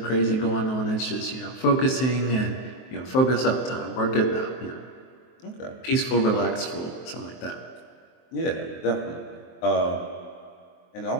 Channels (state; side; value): late; right; 23 ms